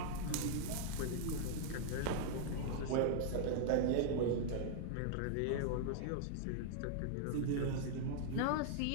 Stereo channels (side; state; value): both; different; correlation -0.01